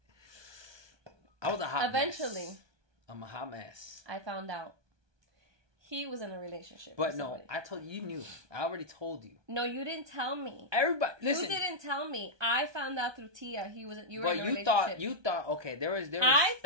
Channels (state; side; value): late; left; 1.2 ms